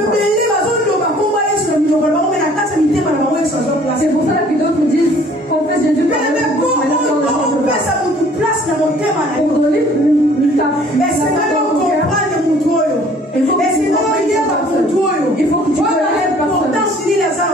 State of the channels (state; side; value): normal; both; correlation 0.55